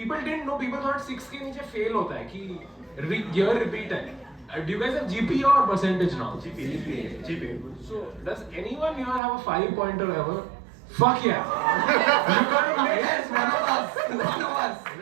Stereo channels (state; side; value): drops out; left; at 9.2 s